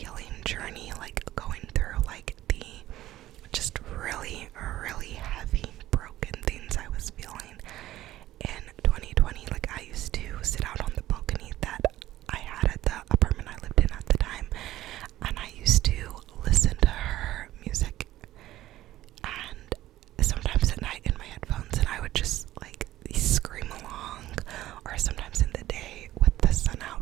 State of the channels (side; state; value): left; quieter; 14.8 dB